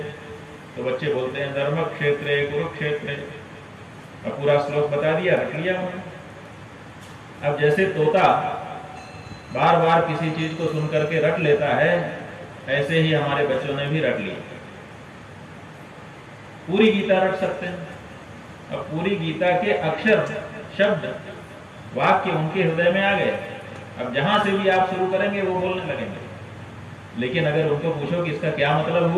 तो बच्चे बोलते हैं धर्म क्षेत्रे कुरुक्षेत्रे। अब पूरा श्लोक बता दिया, रख लिया उन्होंने। अब जैसे तोता बार बार किसी चीज को सुन करके रट लेता है, ऐसे ही हमारे बच्चों ने भी रट लिया। पूरी गीता रट सकते हैं। अब पूरी गीता के अक्षर, शब्द, वाक्य उनके हृदय में आ गए। अब जहां से भी आप शुरू करेंगे वो बोलने लगेंगे। लेकिन अगर उनको पूछो कि इसका क्या मतलब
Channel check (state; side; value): identical; both; correlation 1.00